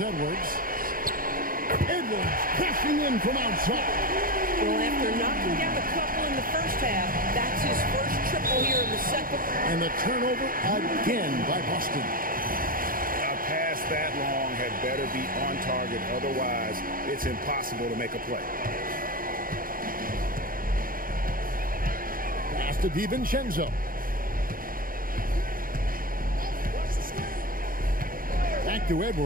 Edwards. Edwards crashing in from outside. Well, after knocking down a couple in the first half, that's his first triple here in the second. And the turnover again by Boston. A pass that long had better be on target. Otherwise, it's impossible to make a play. Pass to DiVincenzo. Back to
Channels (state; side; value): late; left; 0.41 ms